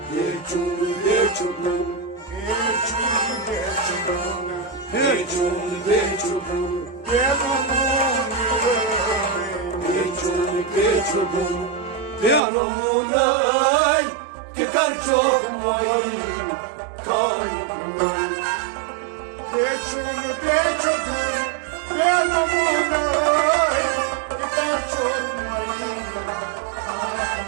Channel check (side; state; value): left; drops out; at 12.4 s